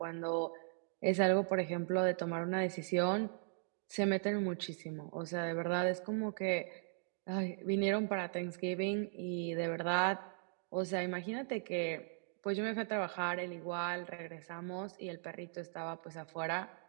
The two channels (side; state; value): left; silent; digital silence